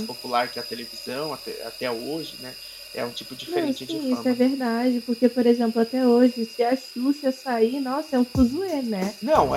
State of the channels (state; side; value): identical; both; correlation 1.00